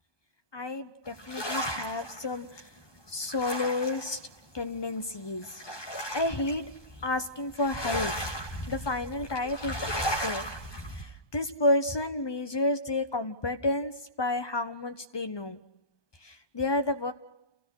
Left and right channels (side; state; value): right; late; 1.2 ms